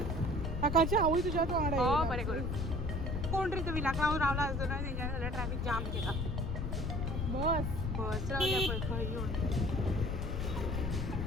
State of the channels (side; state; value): left; noise; rumble, 1 dB below the sound